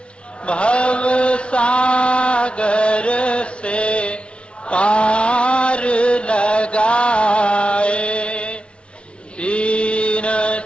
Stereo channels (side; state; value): right; late; 0.058 ms